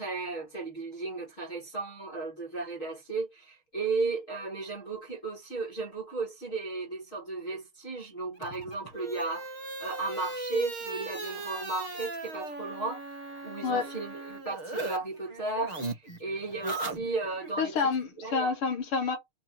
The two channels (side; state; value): right; late; 6.5 ms